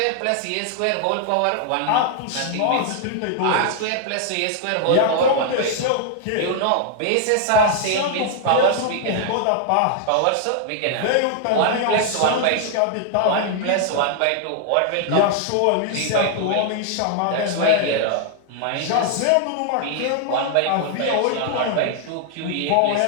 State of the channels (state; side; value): different; both; correlation 0.00